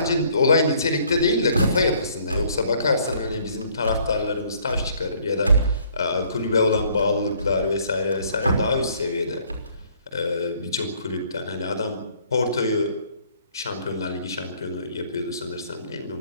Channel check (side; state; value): both; inverted; correlation -0.62